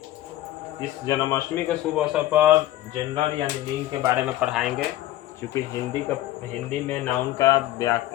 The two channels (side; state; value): right; quieter; 14.8 dB